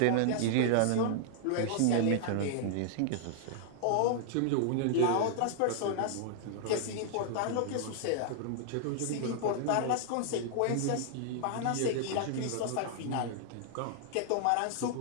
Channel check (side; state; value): both; different; correlation -0.01